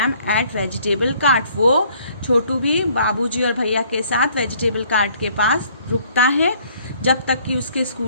at vegetable cart. वो छोटू भी बाबूजी और भैया के साथ वेजिटेबल कार्ट के पास रुकता है जब तक कि उसके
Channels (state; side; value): inverted; both; correlation -0.60